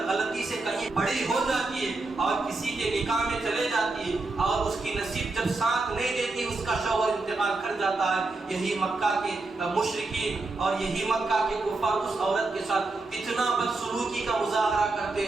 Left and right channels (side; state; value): left; quieter; 3.4 dB